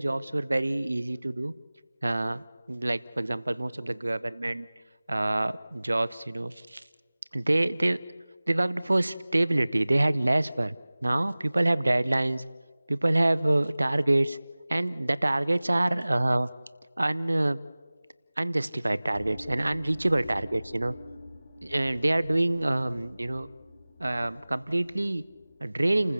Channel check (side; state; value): both; inverted; correlation -0.99